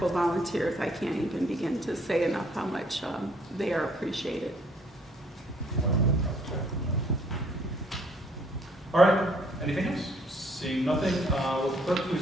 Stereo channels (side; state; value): both; normal; correlation 0.64